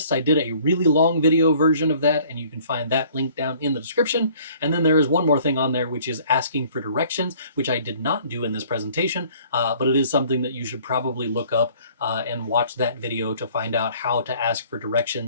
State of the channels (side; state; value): both; inverted; correlation -0.55